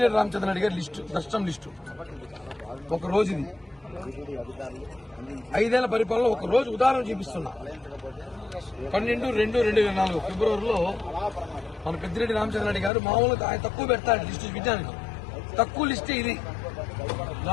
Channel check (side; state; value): right; drops out; at 12.9 s